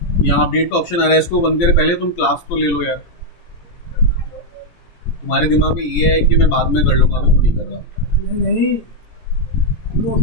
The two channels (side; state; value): right; late; 17 ms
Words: यहाँ अपडेट का ऑप्शन आ रहा है, इसको बंद करे पहले तुम क्लास तो ले लो यार। तुम्हारे दिमाग में ये है कि मैं बाद में कर लूंगा, अभी तो नहीं कर रहा। नहीं